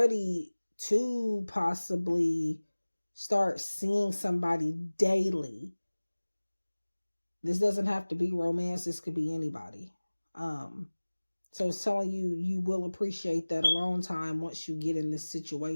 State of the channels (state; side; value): inverted; both; correlation -1.00